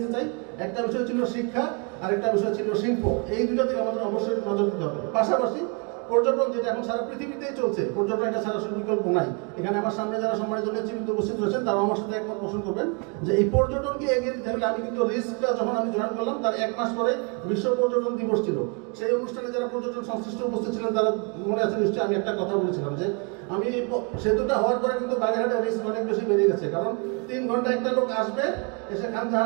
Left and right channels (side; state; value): left; quieter; 34.3 dB